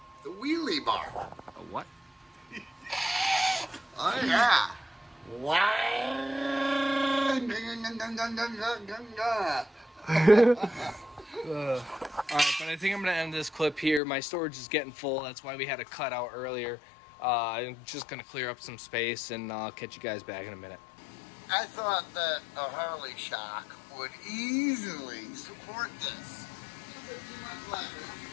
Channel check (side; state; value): right; drops out; at 14.0 s